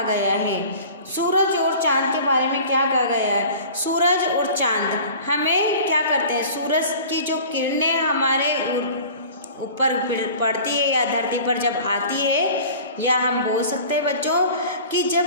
गया है? सूरज और चांद के बारे में क्या कहा गया है? सूरज और चांद हमें क्या करते हैं? सूरज की जो किरणें हमारे ऊपर पड़ती है या धरती पर जब आती है, या हम बोल सकते हैं बच्चों कि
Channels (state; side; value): inverted; both; correlation -0.42